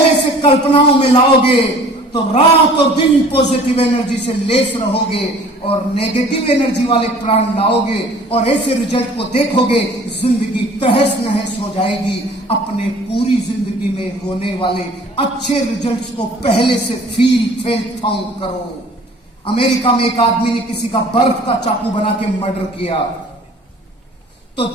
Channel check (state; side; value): normal; both; correlation 0.49